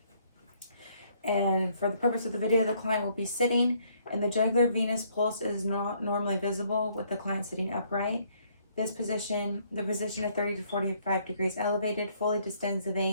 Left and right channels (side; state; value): both; inverted; correlation -0.66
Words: And for the purpose of the video, the client will be sitting, and the jugular venous pulse is not normally visible with the client sitting upright. This position, the position of 30 to 45 degrees elevated, fully distends the